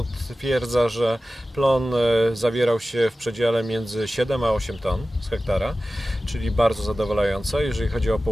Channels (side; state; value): both; normal; correlation 0.96